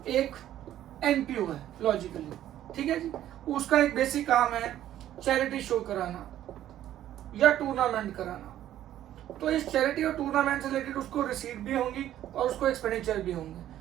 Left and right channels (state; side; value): quieter; left; 12.2 dB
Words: एक एनपीओ है लॉजिकली, ठीक है जी, उसका एक बेसिक काम है चैरिटी शो कराना या टूर्नामेंट कराना। तो इस चैरिटी और टूर्नामेंट से रिलेटेड उसको रिसीट भी होंगी और उसको एक्सपेंडिचर भी होंगे,